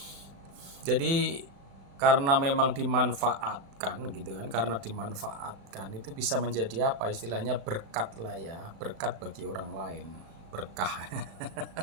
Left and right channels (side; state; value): left; late; 36 ms